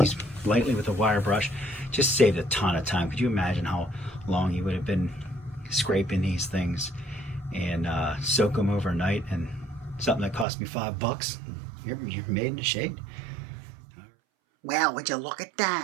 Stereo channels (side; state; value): left; drops out; at 10.5 s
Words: lightly with a wire brush. Just saved a ton of time. Could you imagine how long you would have been scraping these things and soak them overnight, and something that cost me $5, you're made in the shade. Well, would you look at